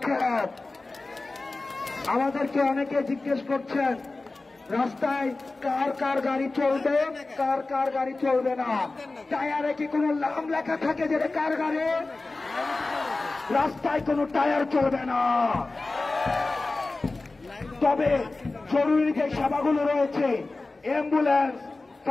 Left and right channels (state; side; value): quieter; right; 3.3 dB